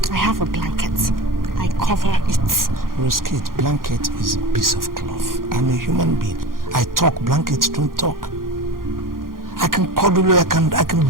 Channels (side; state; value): left; late; 0.91 ms